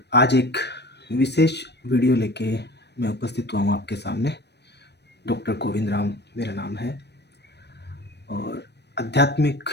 आज एक विशेष वीडियो लेके मैं उपस्थित हुआ हूँ आपके सामने। डॉक्टर गोविंद राम मेरा नाम है और आध्यात्मिक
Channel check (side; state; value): right; late; 0.49 ms